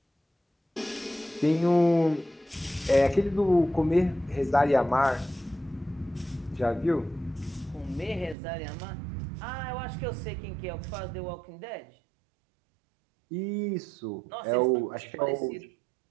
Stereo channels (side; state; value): left; drops out; at 8.3 s